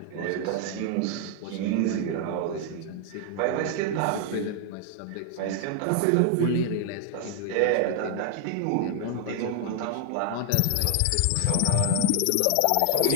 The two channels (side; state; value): both; different; correlation 0.00